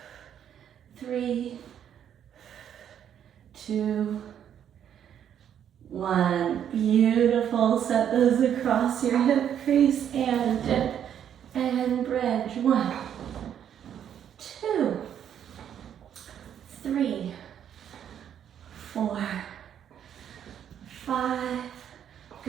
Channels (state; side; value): quieter; left; 9.4 dB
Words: 3, 2, 1. Beautiful. Set those across your hip crease and dip and bridge. 1, 2, 3, 4, 5.